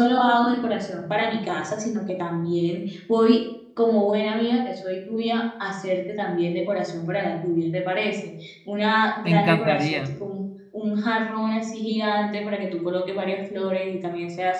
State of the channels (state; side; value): identical; both; correlation 1.00